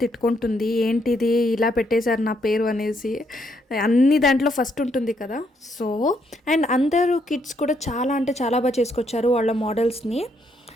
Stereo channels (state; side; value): normal; both; correlation 0.74